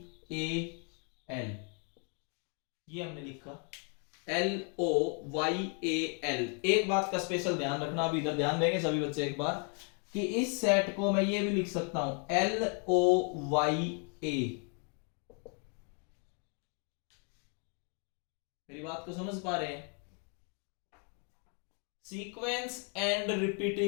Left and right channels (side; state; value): right; quieter; 39.6 dB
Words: A L, ये हमने लिखा L O Y A L. एक बात का स्पेशल ध्यान रखना, अभी इधर ध्यान देंगे सभी बच्चे एक बार, कि इस सेट को मैं ये भी लिख सकता हूं एल ओ वाई ए। मेरी बात को समझ पा रहे हैं? Sequence and